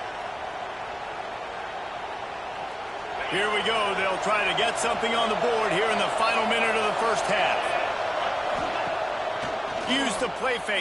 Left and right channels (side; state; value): both; identical; correlation 1.00